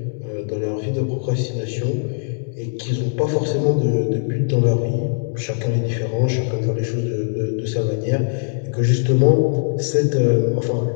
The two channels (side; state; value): right; silent; digital silence